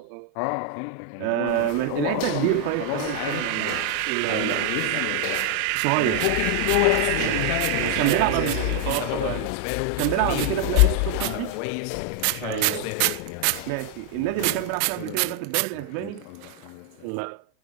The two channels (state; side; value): different; both; correlation 0.00